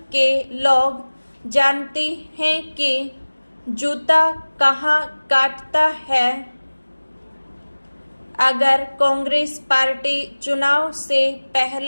के लोग जानते हैं कि जूता कहाँ काटता है। अगर कांग्रेस पार्टी चुनाव से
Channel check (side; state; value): both; inverted; correlation -1.00